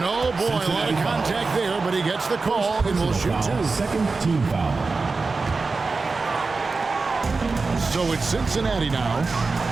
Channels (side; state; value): left; quieter; 4.1 dB